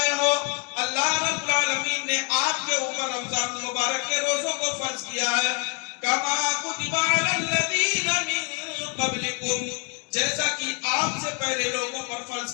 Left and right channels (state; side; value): quieter; right; 32.5 dB